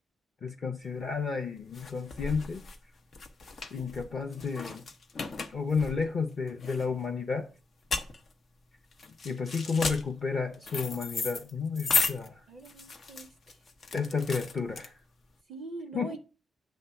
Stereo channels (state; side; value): quieter; right; 4.2 dB